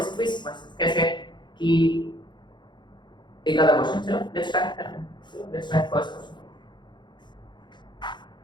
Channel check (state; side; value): late; right; 0.22 ms